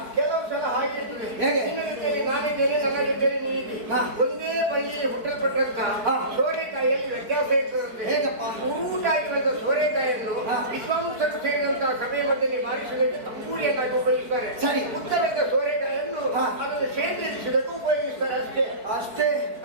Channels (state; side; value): late; left; 4.6 ms